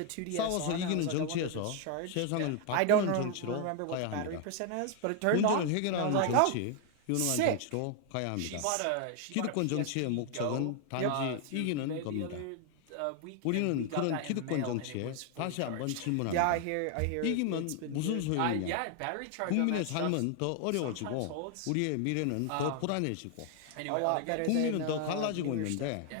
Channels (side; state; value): both; different; correlation 0.00